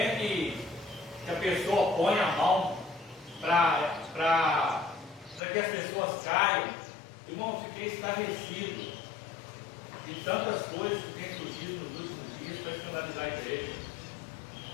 que a pessoa põe a mão para que as pessoas caiam. Irmão, fiquei estarrecido de tantas coisas que têm surgido nos últimos dias para escandalizar a igreja.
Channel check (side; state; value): right; drops out; at 5.4 s